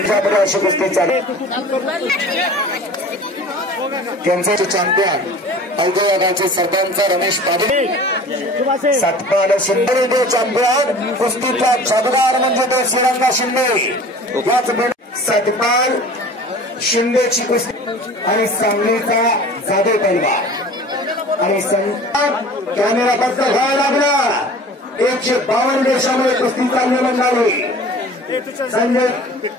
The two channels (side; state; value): both; normal; correlation 0.43